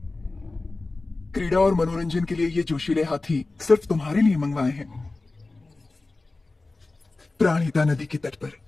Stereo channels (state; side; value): quieter; right; 3.3 dB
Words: क्रीड़ा और मनोरंजन के लिए ये जोशीले हाथी सिर्फ तुम्हारे लिए मंगवाए हैं। प्राणहिता नदी के तट पर